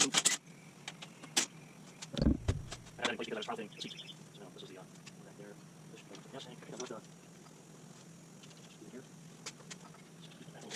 I had it in place because I was piloting the seat. So this is the back there. This should go with the gas tank. I got with the here. Keep that a little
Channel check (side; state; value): both; identical; correlation 1.00